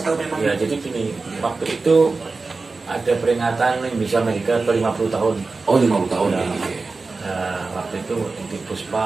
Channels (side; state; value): left; quieter; 3.9 dB